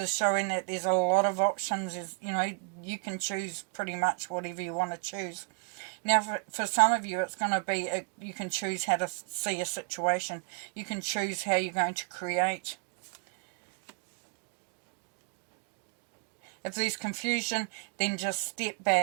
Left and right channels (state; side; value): quieter; left; 31.9 dB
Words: showing that there's a lot of options. You can choose pretty much whatever you want to choose. Now, for some of you, it's going to be, you can choose how to see a situation. You can choose how you're going to create. If there's confusion, then just step